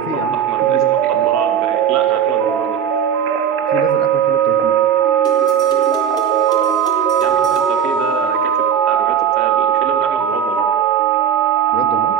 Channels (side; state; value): left; quieter; 8.5 dB